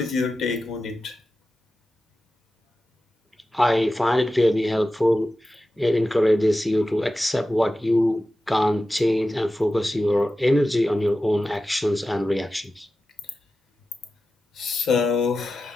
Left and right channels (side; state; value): both; normal; correlation 0.93